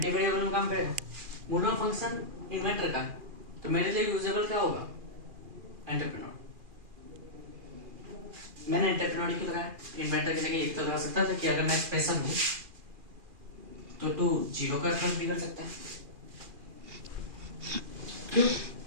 वेरिएबल में काम करेगा, मोडल फंक्शन इन्वेंटर का है, तो मेरे लिए यूजेबल क्या होगा, एंटरप्रेन्योर। मैंने एंटरप्रेन्योर क्यों लगाया, इन्वेंटर की जगह एक तो लगा सकता था कि अगर मैं एक्सप्रेशन हूं तो तू जीरो का अप्रोच भी कर सकता है। क्यों?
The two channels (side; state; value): left; late; 2.4 ms